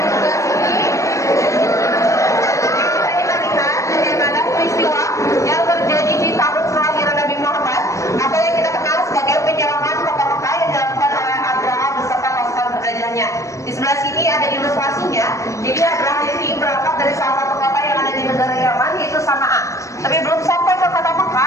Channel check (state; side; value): late; right; 0.15 ms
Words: Di sebelah sini ada ilustrasinya. Jadi Abraham ini berangkat dari salah satu kota yang ada di negara Yaman, yaitu Sana'a. Tapi belum sampai ke kota